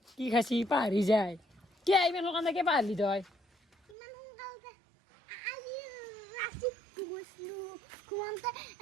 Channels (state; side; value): drops out; left; at 4.0 s